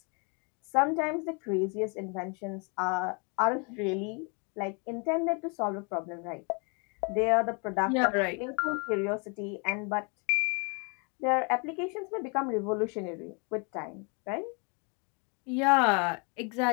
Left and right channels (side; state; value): right; quieter; 34.5 dB